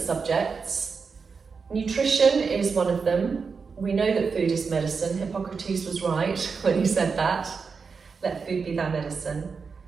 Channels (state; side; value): quieter; left; 5.2 dB